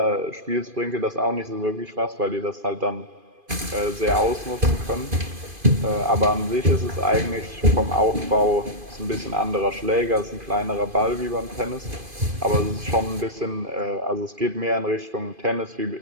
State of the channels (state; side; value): late; left; 2.5 ms